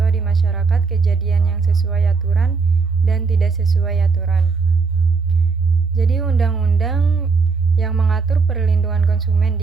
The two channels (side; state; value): left; quieter; 4.7 dB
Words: di masyarakat kejadian yang sesuai aturan dan tidak sesuai aturan. Jadi undang-undang yang mengatur perlindungan konsumen